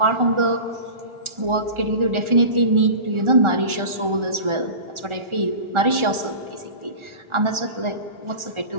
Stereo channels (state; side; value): late; left; 1.4 ms